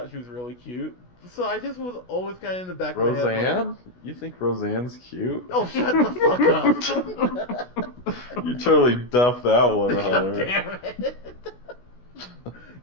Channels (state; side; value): late; right; 16 ms